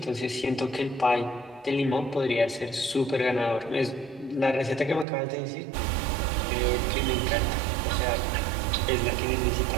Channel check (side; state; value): left; drops out; at 5.1 s